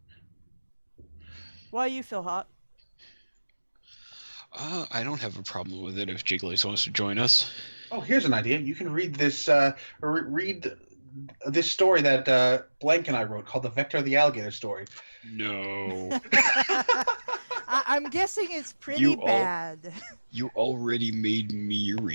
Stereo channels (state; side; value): inverted; both; correlation -1.00